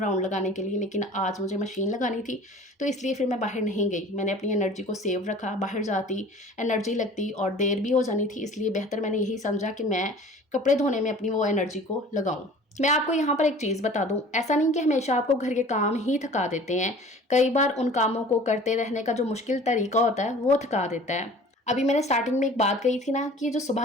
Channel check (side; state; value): both; normal; correlation 0.45